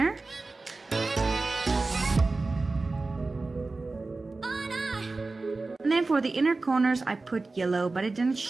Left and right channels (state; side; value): quieter; left; 3.5 dB